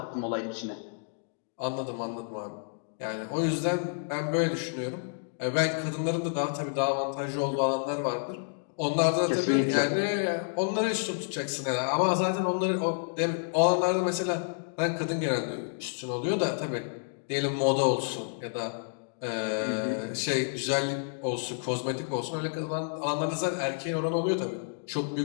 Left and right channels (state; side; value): silent; right; digital silence